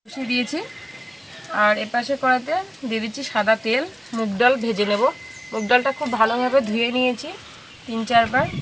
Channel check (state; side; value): identical; both; correlation 1.00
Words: বসিয়ে দিয়েছি। আর এপাশে কড়াতে দিয়ে দিচ্ছি সাদা তেল। মুগ ডাল ভেজে নেব। মুগ ডালটা খুব ভালোভাবে ধুয়ে নিয়েছি 3-4 বার।